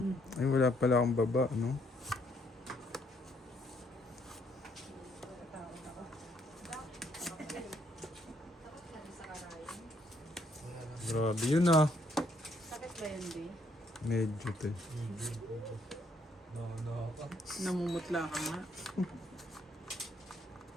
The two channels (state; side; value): normal; both; correlation 0.71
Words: Ay, wala pala akong baba, no? Grabe yun ah. Sakit ba yun, Di? Medyo te. Namumutla ka nga.